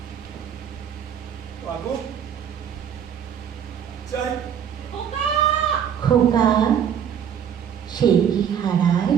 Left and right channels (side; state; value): left; quieter; 8.6 dB